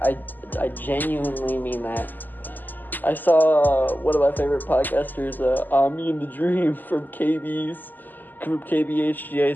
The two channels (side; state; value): right; late; 0.087 ms